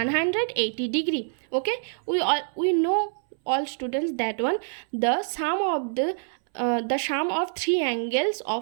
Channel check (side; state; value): left; silent; 61 dB below the other